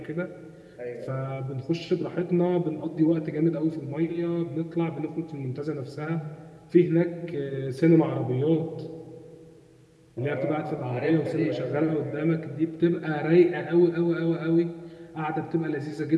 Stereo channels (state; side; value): identical; both; correlation 1.00